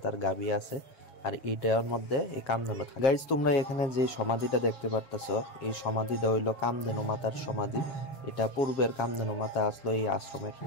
গাবি আছে, আর এইটার মধ্যে এই কামধেনু থাকে। গাইস তোমরা এখানে যে সমাধিটা দেখতে পারতাছো, এই সমাধিটা হইলো কামধেনু মাতার সমাধি। এটা পূর্বের কামধেনু মাতা আসলো এই আশ্রমের।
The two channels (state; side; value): late; right; 7.3 ms